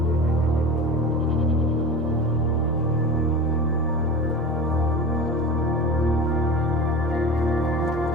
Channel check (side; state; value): both; normal; correlation 0.32